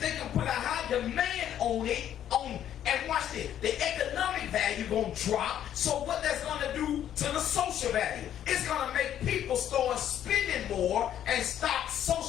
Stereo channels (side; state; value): right; quieter; 10.6 dB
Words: can put a high demand on it, and watch this, the economic value gonna drop. So what that's gonna do to the social value? It's gonna make people start spending more and stop